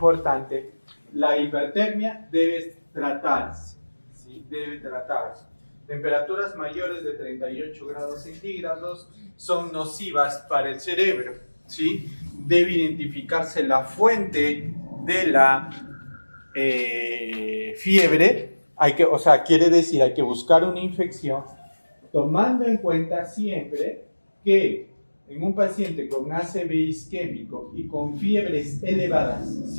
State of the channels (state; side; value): inverted; both; correlation -1.00